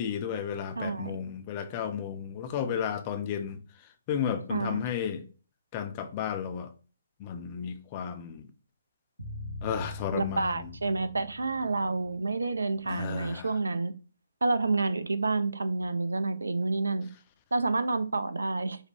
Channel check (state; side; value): inverted; both; correlation -0.74